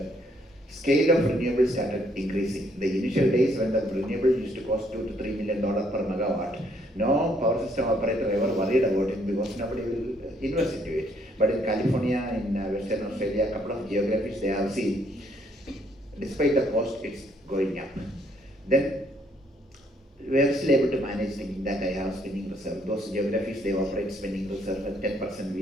scale of renewables started increasing. The initial days when the renewable used to cost $2 to $3 million per megawatt, no power system operator ever worried about it because nobody will invest into it. But in California, in Western Australia, a couple of geographies they have seen, despite the cost, it's going up. Then we are still able to manage thinking that I have spinning reserve. Those geographies, they operate spinning reserve at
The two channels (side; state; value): both; normal; correlation 0.68